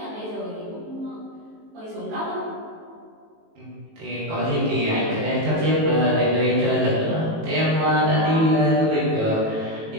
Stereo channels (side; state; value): left; late; 18 ms